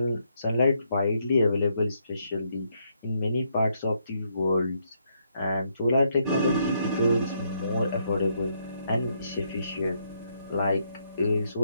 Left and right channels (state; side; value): inverted; both; correlation -0.75